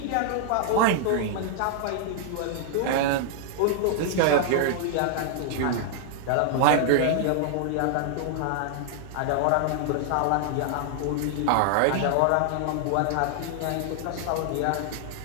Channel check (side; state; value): both; different; correlation -0.01